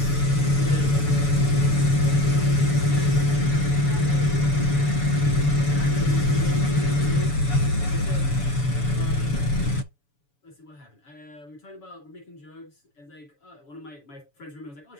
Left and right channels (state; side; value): late; right; 7.0 ms